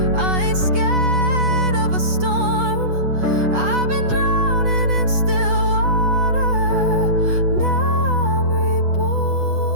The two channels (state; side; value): late; left; 8.1 ms